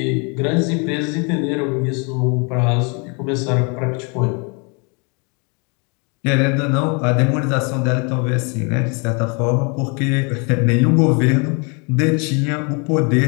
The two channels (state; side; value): quieter; right; 33.5 dB